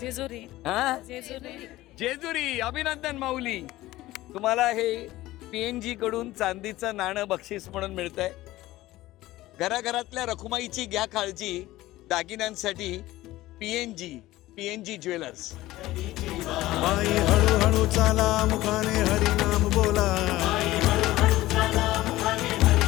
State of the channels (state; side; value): quieter; right; 16.9 dB